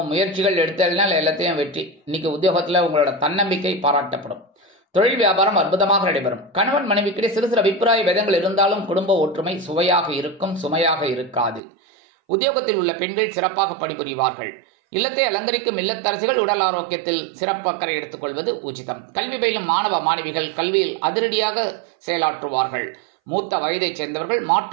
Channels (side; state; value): left; drops out; at 11.6 s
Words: முயற்சிகள் எடுத்ததுனால எல்லாத்தையும் வெற்றி. இன்னைக்கு உத்தியோகத்துல உங்களோட தன்னம்பிக்கை பாராட்டப்படும். தொழில் வியாபாரம் அற்புதமாக நடைபெறும். கணவன் மனைவிக்கிடையே சிறு சிறு அபிப்பிராய பேதங்கள் இருந்தாலும் குடும்ப ஒற்றுமை சுவையாக இருக்கும், சுமையாக இருக்காது. உத்தியோகத்தில் உள்ள பெண்கள் சிறப்பாக பணிபுரிவார்கள். இல்லத்தை அலங்கரிக்கும் இல்லத்தரசிகள் உடல் ஆரோக்கியத்தில் சிறப்பு அக்கறை எடுத்துக்கொள்வது உச்சிதம். கல்வி பயிலும் மாணவ மாணவிகள் கல்வியில் அதிரடியாக செயலாற்றுவார்கள். மூத்த வயதைச் சேர்ந்தவர்கள்